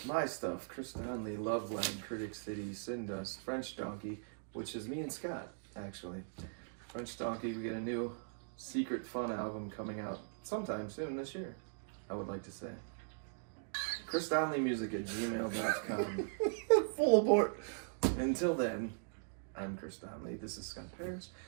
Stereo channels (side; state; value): left; silent; digital silence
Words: my stuff. Chris Donley, Love Land, Critic City, Sin Dust, French Donkey, which is me and Scott, actually. French Donkey, we get a new secret fun album coming out sometime soon this year, I would like to say. ChrisDonleyMusic@gmail.com. Full abort. Until then, I'm Chris Donley. This is Scott Paris.